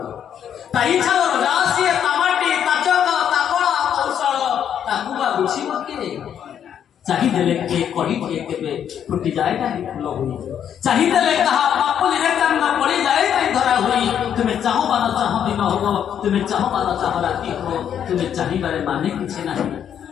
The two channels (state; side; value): quieter; right; 9.0 dB